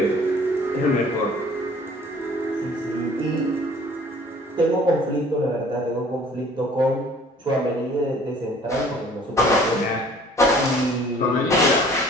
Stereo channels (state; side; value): normal; both; correlation 0.53